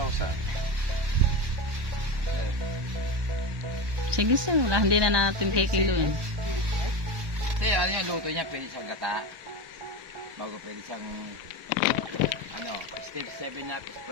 Sige, sir. Wala, hindi na natin kikiluhin. Kasi ano yung luto niya, pwede siyang gata. Bago pwede siyang stir 7 na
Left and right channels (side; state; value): left; late; 1.2 ms